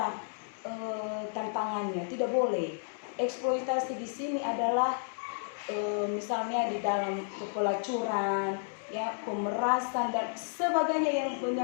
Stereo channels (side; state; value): right; silent; digital silence